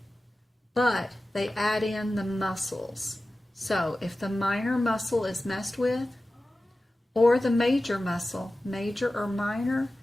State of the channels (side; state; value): both; normal; correlation 0.95